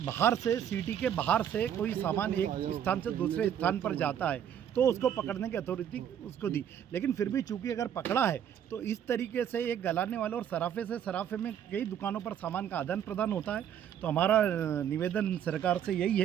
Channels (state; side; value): quieter; left; 9.4 dB